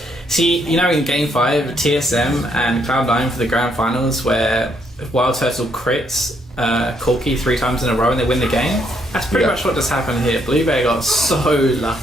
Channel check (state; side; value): normal; both; correlation 0.72